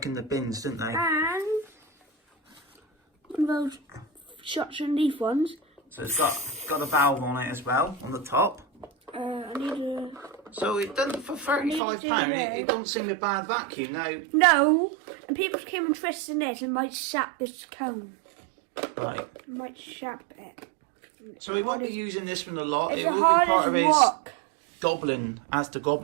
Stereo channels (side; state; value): left; drops out; at 11.8 s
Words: in the bins, didn't they? And one of those shots and leaf ones. So it's got a valve on it as well, on the top. I need a... So it doesn't, for £35, it doesn't seem a bad vacuum. Now, No, and people came and twisted this and might sap this cone. right. Might sap it. So he won't be using this one a lot. It's It will hard be part as of his rock. Goblin, ASDA